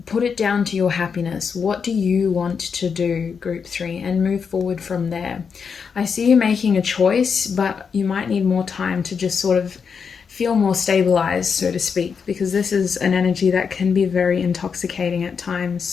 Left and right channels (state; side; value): quieter; right; 6.1 dB